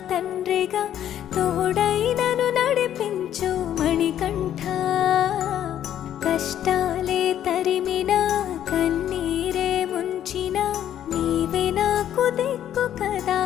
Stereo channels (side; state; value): right; quieter; 10.8 dB